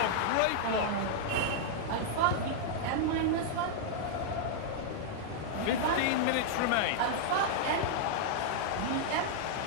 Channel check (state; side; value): different; both; correlation -0.01